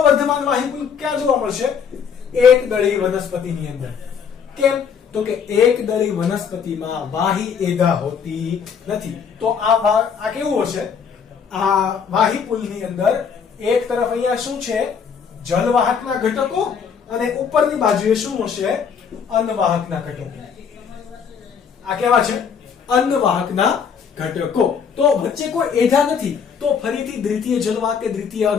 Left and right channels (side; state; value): right; quieter; 6.8 dB